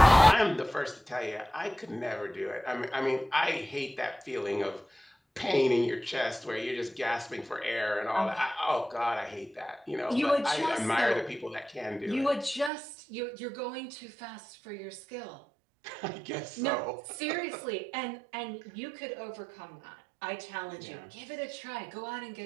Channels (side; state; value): left; drops out; at 12.7 s